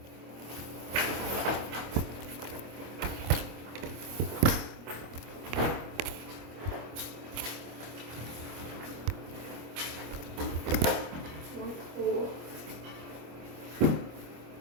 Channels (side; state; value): left; late; 25 ms